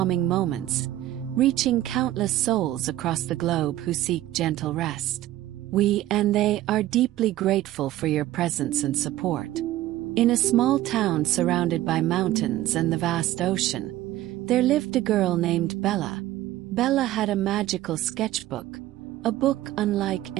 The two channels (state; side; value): quieter; left; 14.7 dB